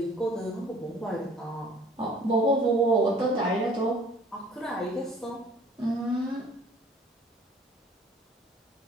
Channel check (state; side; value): normal; both; correlation 0.53